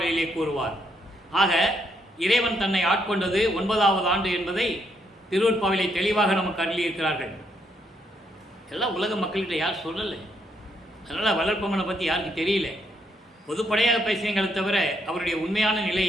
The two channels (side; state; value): both; normal; correlation 0.75